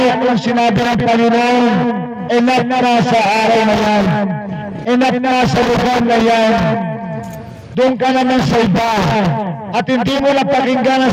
kung sinabi ng Panginoon, enough na sa araw na yan, enough na sa lugar na yan, doon ka naman sa iba, at hindi mo napakinggan ang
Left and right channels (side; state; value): both; identical; correlation 1.00